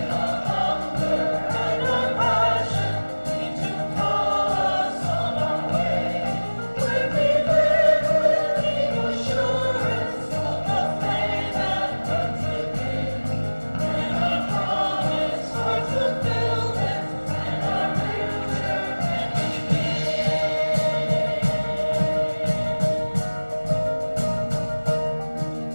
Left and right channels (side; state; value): both; inverted; correlation -1.00